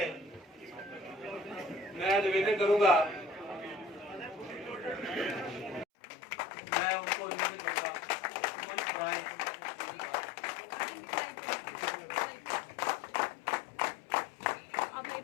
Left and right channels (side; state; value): right; drops out; at 5.9 s